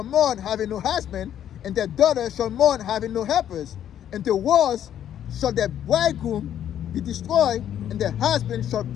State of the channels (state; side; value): quieter; right; 10.4 dB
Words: mourn having no husband, and their daughter shall mourn having no helpers. And the wars shall their bridegroom be destroyed, and their husband shall